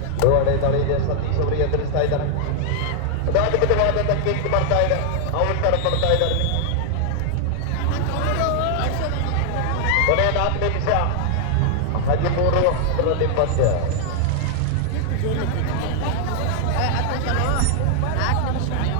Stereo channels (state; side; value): different; both; correlation 0.00